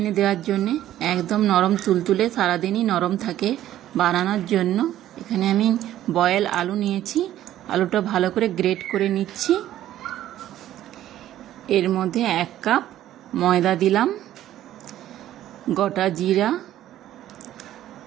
দেওয়ার জন্য একদম নরম তুলতুলে, সারা দিনই নরম থাকে। বানানোর জন্য এখানে আমি বয়েল আলু নিয়েছি। আলুটা ভালো করে গ্রেট করে নিচ্ছি। এর মধ্যে 1 কাপ ময়দা দিলাম, গোটা জিরা,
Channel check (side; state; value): left; quieter; 12.8 dB